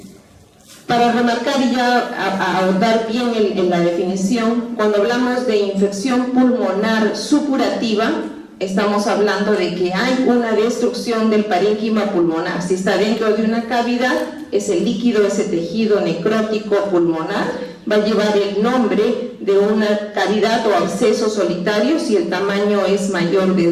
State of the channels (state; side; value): identical; both; correlation 1.00